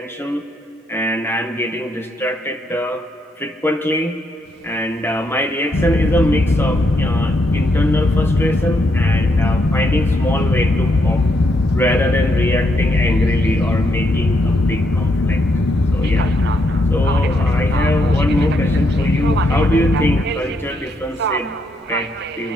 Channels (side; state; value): both; normal; correlation 0.77